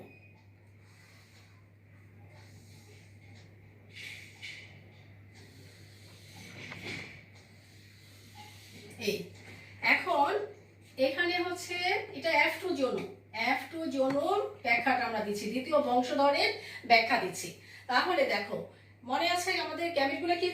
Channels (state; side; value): identical; both; correlation 1.00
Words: এই এখন এখানে হচ্ছে এটা F2 জোন, F2 জোন ব্যাখ্যাটা আমরা দিচ্ছি, দ্বিতীয় বংশধরের ব্যাখ্যা দিচ্ছি। তাহলে দেখো, মনে আছে আমাদের গ্যামেটগুলো কি